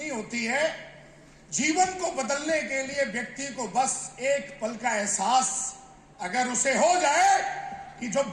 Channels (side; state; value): both; identical; correlation 1.00